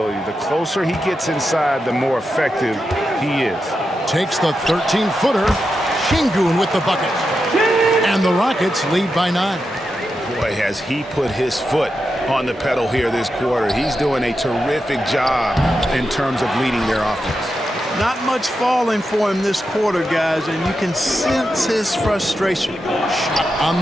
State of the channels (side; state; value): both; normal; correlation 0.88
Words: The closer he gets inside, the more effective he is. Takes the 13-footer. Şengün with the bucket. And the Rockets lead by 9. Boy, has he put his foot on the pedal here this quarter. He's doing a terrific job in terms of leading their offense. Not much falling for him this quarter, guys, and you can sense his frustration. Shot on